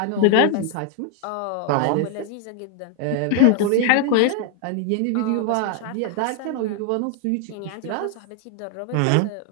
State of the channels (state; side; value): different; both; correlation 0.00